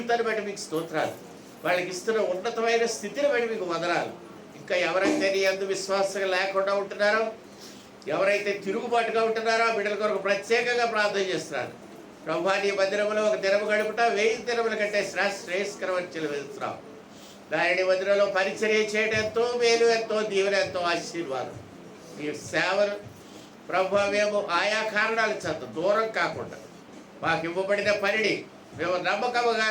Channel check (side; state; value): both; identical; correlation 1.00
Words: బట్టి మీకు స్తోత్రాలు. వాళ్ళకి ఇస్తున్న ఉన్నతమైన స్థితిని బట్టి మీకు వందనాలు. ఇంకా ఎవరైతే నీ అందు విశ్వాసంగా లేకుండా ఉంటున్నారో, ఎవరైతే తిరుగుబాటుగా ఉంటున్నారో ఆ బిడ్డల కొరకు ప్రత్యేకంగా ప్రార్థన చేస్తున్నారు. ప్రభా, నీ మందిరంలో ఒక దినము గడుపుట 1000 దినముల కంటే శ్రేయస్కరమని చెల్లిస్తున్నావు. దాని మందిరంలో పరిచర్య చేయడం ఎంతో మేలు, ఎంతో దీవెన, ఎంతో ఆశీర్వాదం. మీ సేవలు ప్రభా మేము ఆయా కారణాల చేత దూరం కాకుండా మాకు ఇవ్వబడిన పనిని మేము